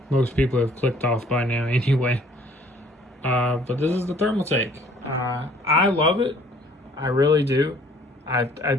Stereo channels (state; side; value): normal; both; correlation 0.57